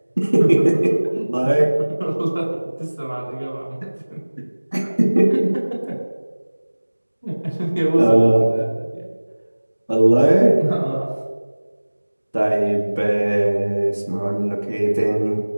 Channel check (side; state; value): both; inverted; correlation -1.00